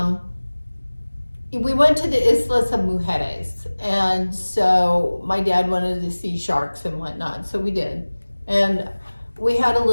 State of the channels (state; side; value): inverted; both; correlation -1.00